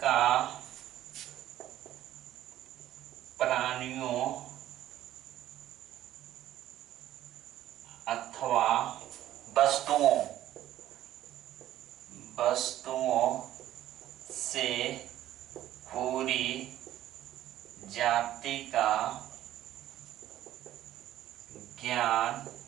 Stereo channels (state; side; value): quieter; left; 13.1 dB